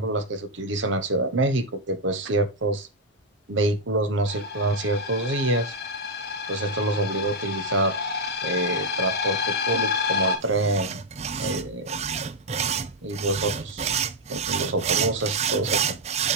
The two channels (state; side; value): normal; both; correlation -0.01